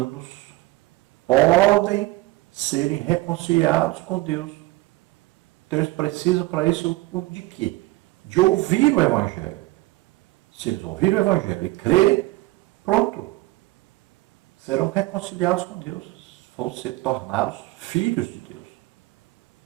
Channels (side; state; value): left; quieter; 19.5 dB